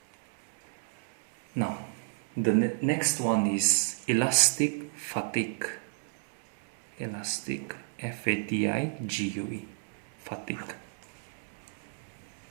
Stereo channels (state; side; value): silent; left; digital silence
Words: Now, the next one is elastic fatigue. Elastic, F-A-T-I-G-U-E, fatigue.